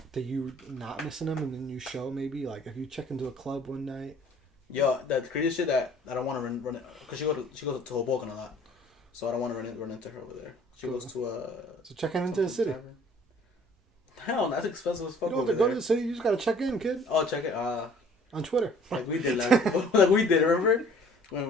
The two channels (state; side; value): normal; both; correlation 0.54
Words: That you not missing them, and then you show maybe like if you check into a club one night. Yo, the crazy shit that I don't want to run because she goes to Hoboken a lot, so I don't want to run into her over there. She goes to so checking into the city. Hell, that's expensive as fuck. You don't have to go to the city. You just gotta check in, kid. Oh, check it. On Twitter. Like we did, like we did. Remember when